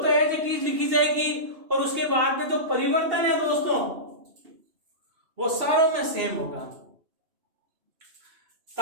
एज इट इज लिखी जाएगी, और उसके बाद में जो परिवर्तन है दोस्तों वो सारों में सेम होगा।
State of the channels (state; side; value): late; left; 2.7 ms